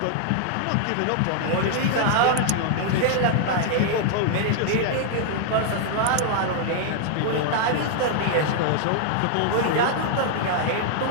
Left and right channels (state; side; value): different; both; correlation -0.01